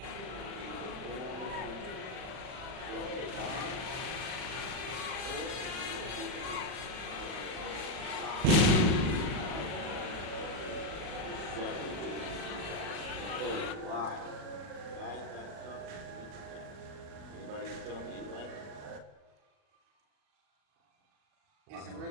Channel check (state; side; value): late; left; 40 ms